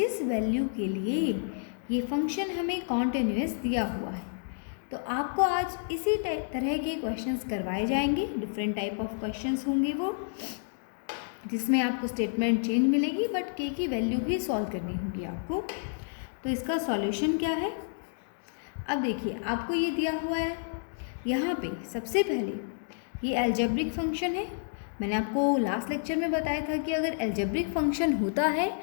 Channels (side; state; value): right; silent; digital silence